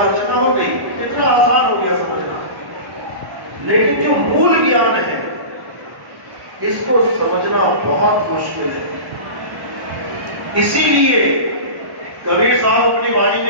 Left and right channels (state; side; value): late; left; 1.1 ms